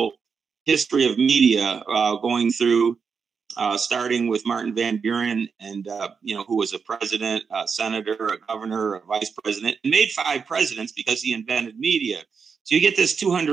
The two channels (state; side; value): quieter; left; 5.8 dB